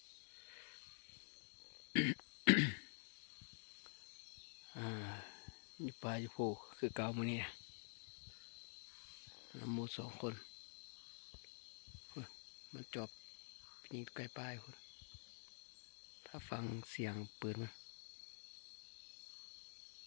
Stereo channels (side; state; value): right; silent; digital silence